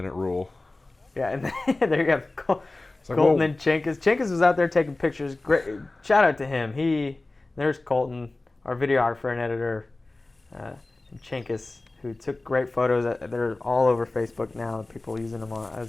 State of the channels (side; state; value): right; quieter; 3.0 dB